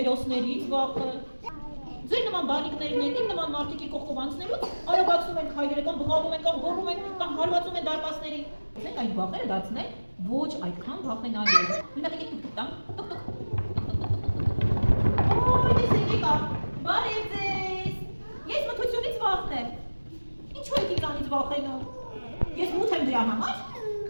վախը։ Ձեր նման բանիկներն են, իմ նման մարդիկի կողքով անցնելուց արագացնում են քայլերը, կամ բղավում են, կամ գոռում են, կամ հարվածում են դարպասներին։ Մենք այդ վախերը դարձնել ոչ այդքան վախենալու։ Օրինակ, եկեք տուկ տամ, տուկ տուկ։ Օй, տեսեք եկա, բարև ձեզ։ Ես մթությունից վախն եմ։ Ինչու եք ինձանից վախենում։ Ես մութ եմ դրա համար։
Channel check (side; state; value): both; inverted; correlation -1.00